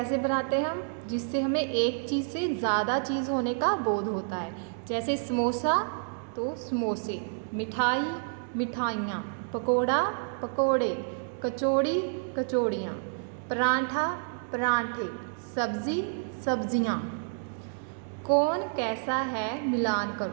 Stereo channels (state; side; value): silent; left; digital silence